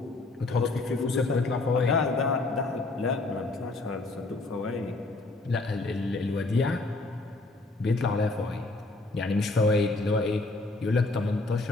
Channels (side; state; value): right; quieter; 3.2 dB